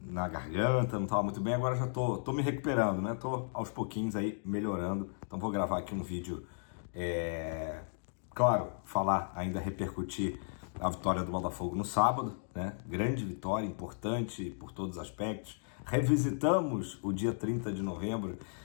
na garganta, não tava muito bem. Agora já tô me recuperando, né? Tô aos pouquinhos aí melhorando. Então vou gravar aqui um vídeo, claro, falar, ainda repercutir a vitória do Botafogo no sábado, né? Grande vitória, importante por todos os aspectos. Revisitamos o dia 30 de novembro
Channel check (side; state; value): right; silent; digital silence